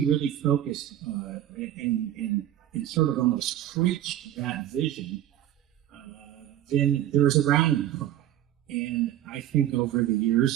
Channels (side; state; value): left; quieter; 12.1 dB